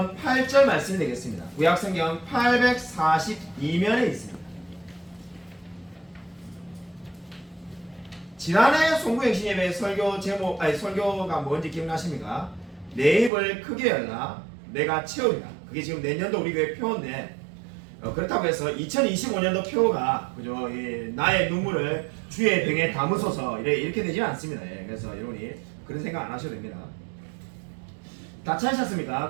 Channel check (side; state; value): left; drops out; at 13.3 s